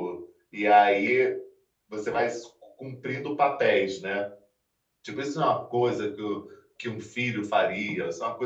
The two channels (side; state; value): both; identical; correlation 1.00